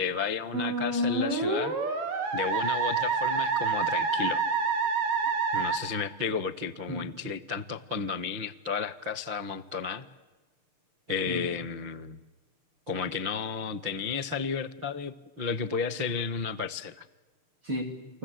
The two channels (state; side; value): late; left; 6.6 ms